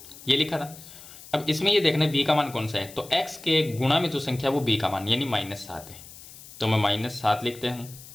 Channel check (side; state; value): left; noise; hiss, 18 dB below the sound